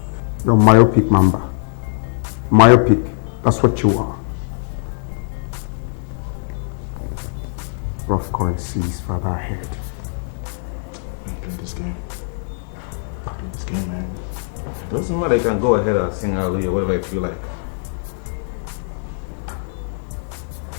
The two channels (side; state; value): right; silent; digital silence